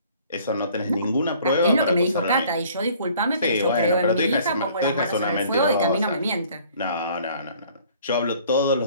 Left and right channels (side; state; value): both; inverted; correlation -0.55